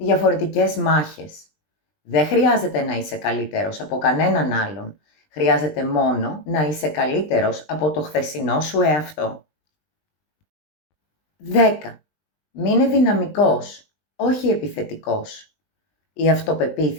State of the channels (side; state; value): right; late; 20 ms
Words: μάχες. Δεν χρειάζεται να είσαι καλύτερος από κανέναν άλλον. Χρειάζεται μόνο να είσαι καλύτερος από το χθεσινό σου εαυτό. 10. Μείνε δυναμικός, όχι επιθετικός. Η